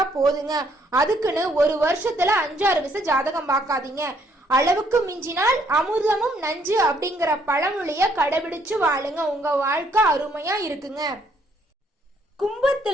போதுங்க. அதுக்குன்னு ஒரு வருஷத்துல 5-6 விஷயம் ஜாதகம் பார்க்காதீங்க. அளவுக்கு மிஞ்சினால் அமிர்தமும் நஞ்சு அப்படிங்கிற பழமொழிய கடைபிடிச்சு வாழுங்க. உங்க வாழ்க்கை அருமையா இருக்குங்க.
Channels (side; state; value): both; normal; correlation 0.68